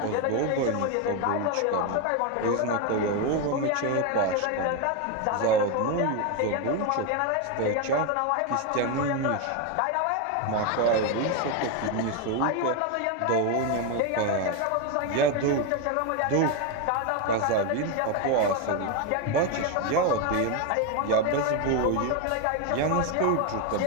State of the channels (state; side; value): different; both; correlation 0.02